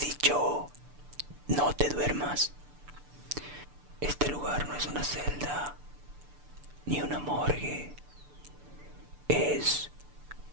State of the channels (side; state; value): left; late; 6.9 ms